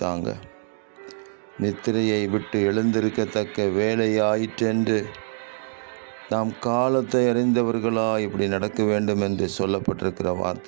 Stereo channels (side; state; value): left; silent; 62 dB below the other